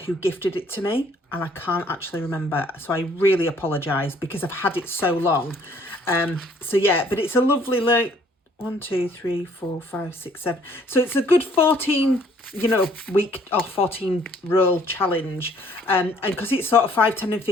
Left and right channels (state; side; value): normal; both; correlation 0.61